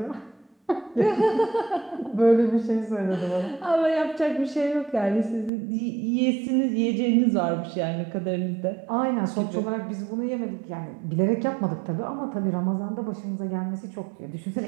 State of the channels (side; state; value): left; drops out; at 5.5 s